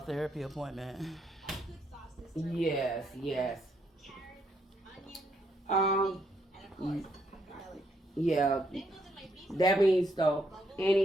therapy appointment. Yes, yes. Um, yeah. That means though,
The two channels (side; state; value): both; normal; correlation 0.74